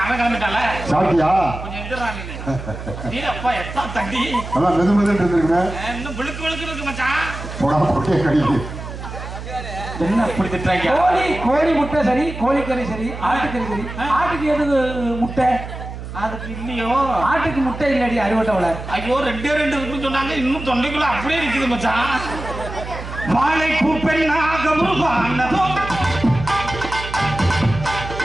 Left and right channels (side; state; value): right; noise; hum, 10 dB below the sound